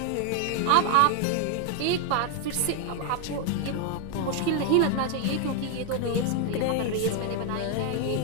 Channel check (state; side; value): different; both; correlation 0.00